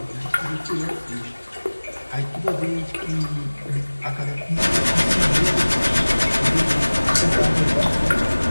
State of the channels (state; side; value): inverted; both; correlation -1.00